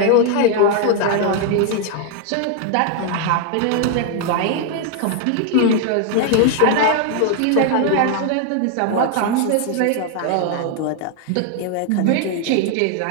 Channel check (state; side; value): different; both; correlation 0.00